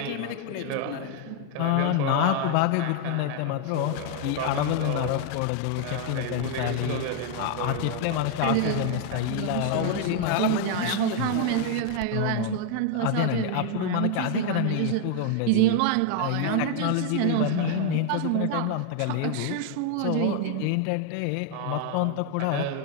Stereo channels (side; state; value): both; different; correlation 0.00